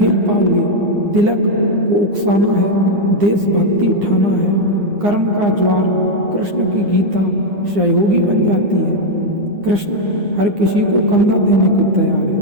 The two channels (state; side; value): late; left; 9.8 ms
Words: पाओगे। तिलक को उकसाना है, देशभक्ति उठाना है, कर्म का ज्वार। कृष्ण की गीता सहयोगी बन जाती है। कृष्ण हर किसी को कंधा देने को तैयार